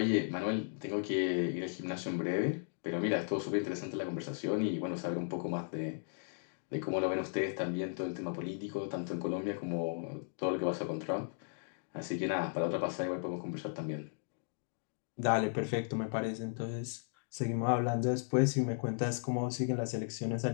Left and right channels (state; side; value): silent; right; digital silence